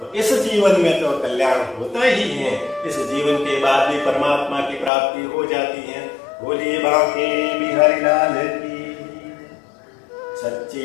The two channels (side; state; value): right; drops out; at 4.9 s